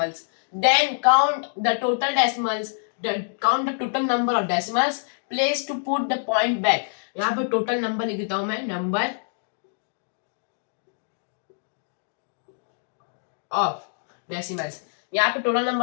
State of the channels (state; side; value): silent; right; digital silence